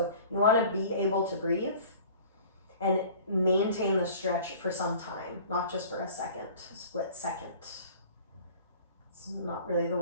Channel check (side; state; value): both; inverted; correlation -0.46